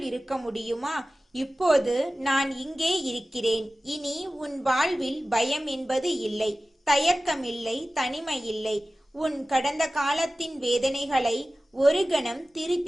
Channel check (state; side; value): normal; both; correlation 0.96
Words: இருக்க முடியுமா? இப்போது நான் இங்கே இருக்கிறேன். இனி உன் வாழ்வில் பயம் என்பது இல்லை, தயக்கமில்லை, தனிமை இல்லை. உன் கடந்த காலத்தின் வேதனைகளை ஒரு கணம்